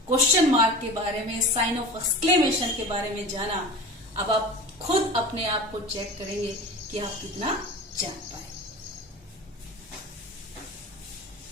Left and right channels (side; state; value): both; normal; correlation 0.34